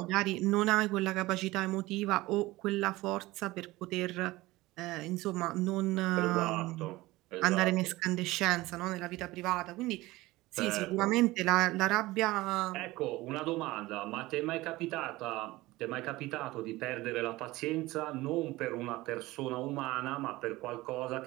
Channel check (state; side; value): quieter; left; 19.3 dB